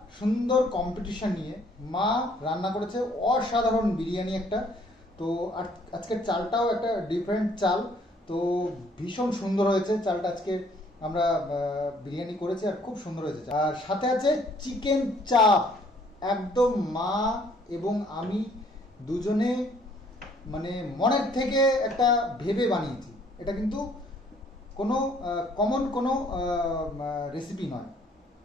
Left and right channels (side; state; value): both; normal; correlation 0.62